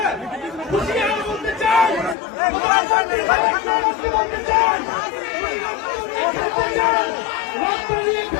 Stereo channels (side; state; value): right; drops out; at 2.1 s